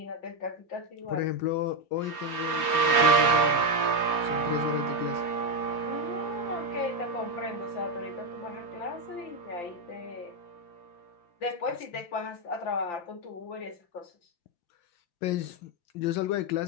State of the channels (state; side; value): late; right; 5.8 ms